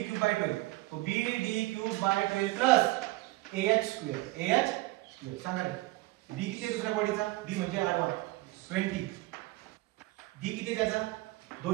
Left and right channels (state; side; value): quieter; left; 20.2 dB